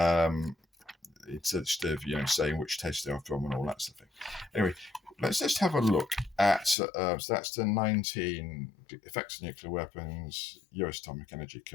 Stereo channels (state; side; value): drops out; right; at 6.8 s